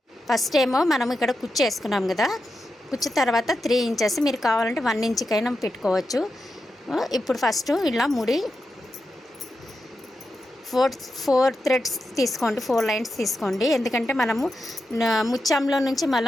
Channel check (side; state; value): both; normal; correlation 0.88